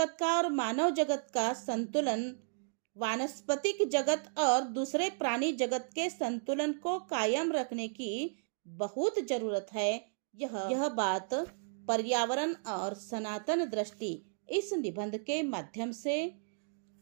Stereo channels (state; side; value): silent; left; digital silence